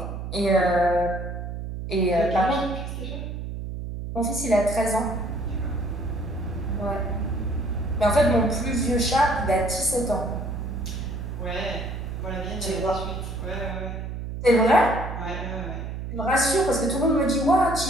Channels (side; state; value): right; noise; hum, 6 dB below the sound